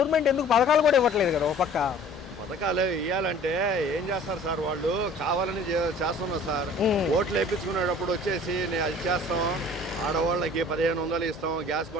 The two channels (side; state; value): both; normal; correlation 0.49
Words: ఎందుకు పథకాలు కూడా ఇవ్వట్లేదు కదా? ఒక పక్క పథకాలు ఇవ్వాలంటే ఏం చేస్తారు సార్, వాళ్ళు కావాలని చేస్తున్నారు సార్. ఓట్లు వేయించుకునేటప్పుడు వచ్చేసి నేను అది చేస్తాం, ఆడవాళ్ళకి 1500 ఇస్తాం, గ్యాస్